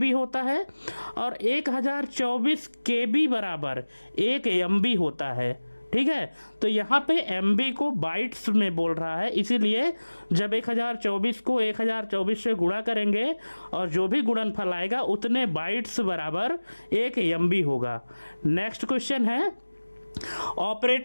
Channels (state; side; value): inverted; both; correlation -1.00